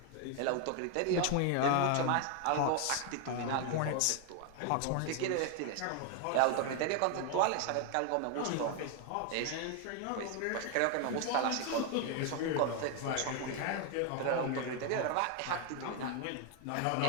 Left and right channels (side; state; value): both; different; correlation 0.01